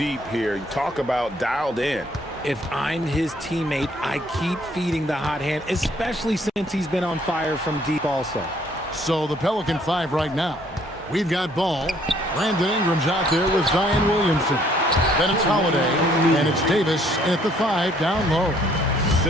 here. Talk about dialed in. If I'm his teammate, I keep feeding the hot hand, especially since he's been on fire from deep also. So the Pelican 5 right now. We've got ball. Brandon Ingram's out there with Zion Williamson. Then it's Holiday, and it's Davis at the 5 down low.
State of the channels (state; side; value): normal; both; correlation 0.63